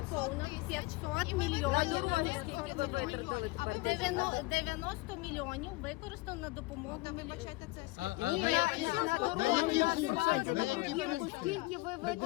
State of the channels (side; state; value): right; quieter; 22.0 dB